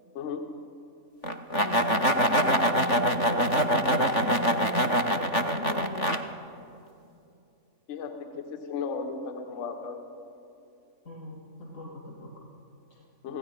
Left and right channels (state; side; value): late; right; 3.4 ms